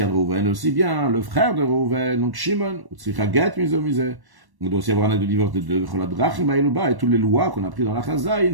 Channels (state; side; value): late; left; 1.1 ms